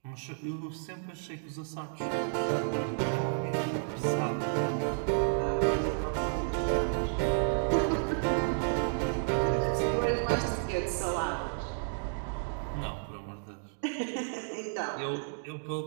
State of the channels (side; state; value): left; silent; digital silence